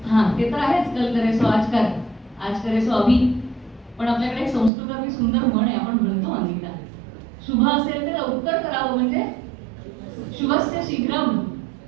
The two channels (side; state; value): left; drops out; at 4.7 s